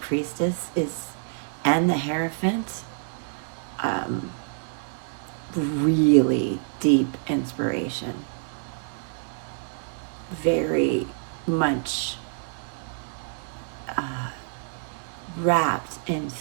and the Hierophant, really deep inspiration, very much wrapped in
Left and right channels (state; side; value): silent; left; digital silence